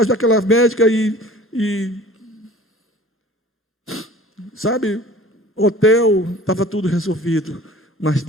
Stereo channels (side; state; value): both; normal; correlation 0.46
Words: daquela médica sabe, hotel, estava tudo resolvido. Mas